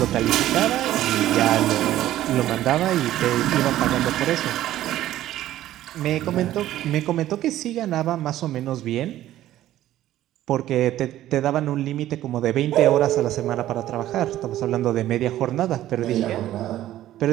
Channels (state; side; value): quieter; left; 13.6 dB